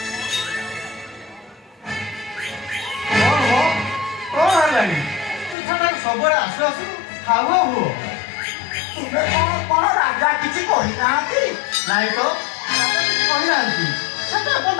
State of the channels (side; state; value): right; drops out; at 5.6 s